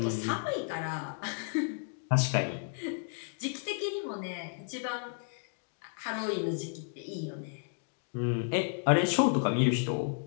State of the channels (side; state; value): right; silent; digital silence